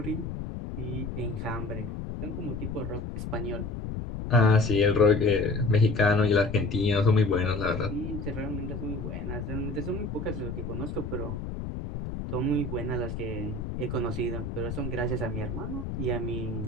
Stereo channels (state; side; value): noise; left; rumble, 6 dB below the sound